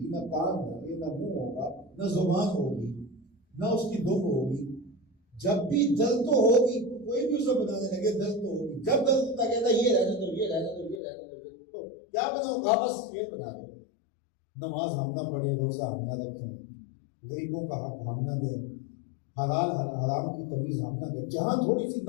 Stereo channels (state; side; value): drops out; right; at 11.0 s